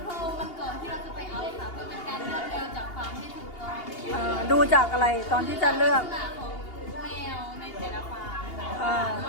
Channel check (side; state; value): right; late; 2.8 ms